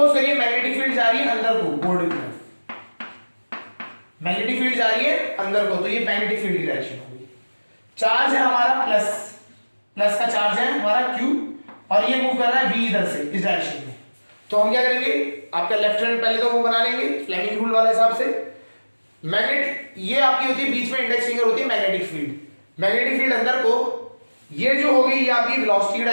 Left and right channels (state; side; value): inverted; both; correlation -1.00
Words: करिए मैग्नेटिक फील्ड जा रही है अंदर को, बोर्ड की तरफ मैग्नेटिक फील्ड जा रही है अंदर को, तो ये मैग्नेटिक फील्ड की डायरेक्शन होगी। चार्ज है हमारा प्लस का चार्ज है हमारा Q, और ये मूव कर रहा है V इधर से इस डायरेक्शन में। तो हम क्या करेंगे, आपका लेफ्ट हैंड पहले तो वो बना लेंगे फ्लेमिंग रूल वाले हिसाब से। मैग्नेट ये आपकी होती है, बीच में इंडेक्स फिंगर होती है मैग्नेटिक फील्ड, मैग्नेटिक फील्ड अंदर को, ये जो होगी ये आपकी वेलोसिटी की